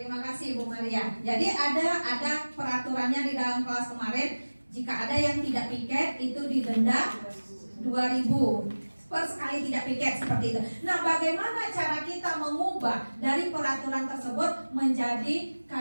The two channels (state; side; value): inverted; both; correlation -1.00